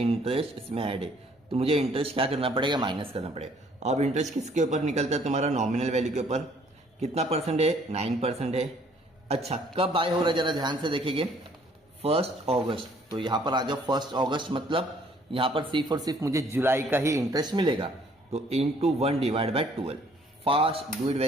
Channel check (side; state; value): both; normal; correlation 0.61